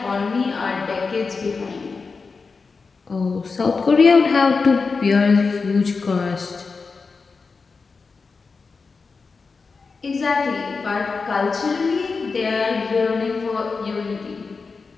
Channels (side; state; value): right; quieter; 4.6 dB